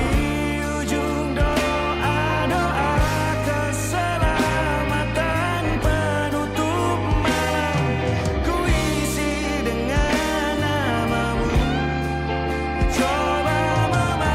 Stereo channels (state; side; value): identical; both; correlation 1.00